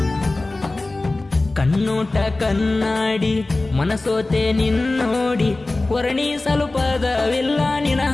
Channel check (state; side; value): quieter; right; 3.0 dB